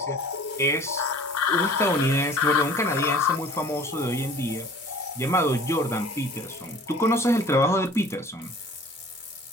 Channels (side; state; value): both; normal; correlation 0.48